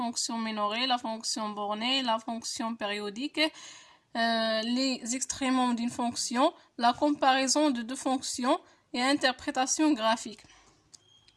minorée, la fonction bornée, la fonction périodique, les extrémums d'une fonction, la comparaison de deux fonctions et interprétation graphique.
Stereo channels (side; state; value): both; identical; correlation 1.00